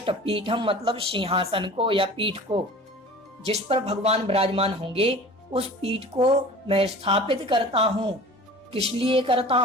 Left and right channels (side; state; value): both; normal; correlation 0.41